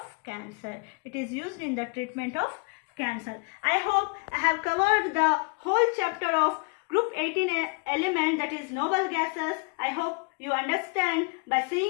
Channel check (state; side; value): quieter; right; 33.1 dB